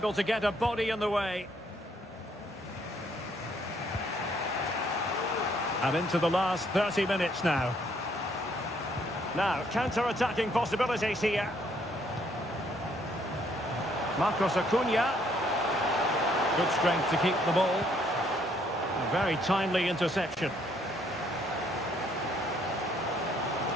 to get a body in the way. And into the last 30 minutes now. Now, counter-attacking possibilities here. Marcos Acuna. Good strength to keep the ball. A very timely interception.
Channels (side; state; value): both; normal; correlation 0.67